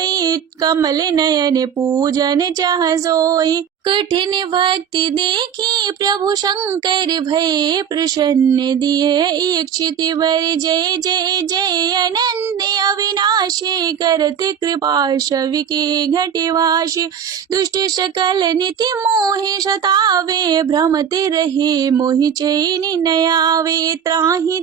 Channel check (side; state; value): left; quieter; 8.2 dB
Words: कमल नयन पूजन चाह सोई, कठिन भक्ति देखी प्रभु शंकर भय। प्रसन्न दिए इच्छित वर, जय जय जय अनंत अविनाशी। करत कृपा शवि के घटवाशी, दुष्ट सकल निति मोहि सतावे। भ्रमत रहे मोहि चैन न आवे,